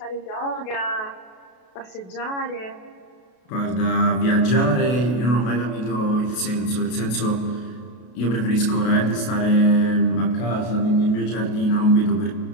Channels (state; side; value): late; right; 32 ms